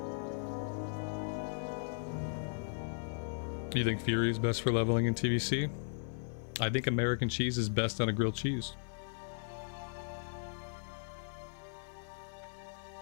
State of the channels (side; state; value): right; silent; 53 dB below the other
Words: You think Fury is best for leveling in TVC? I think American cheese is best on a grilled cheese.